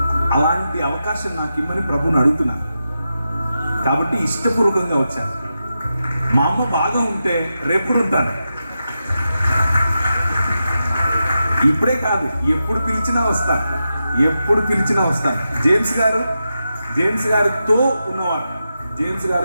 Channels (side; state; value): both; inverted; correlation -0.89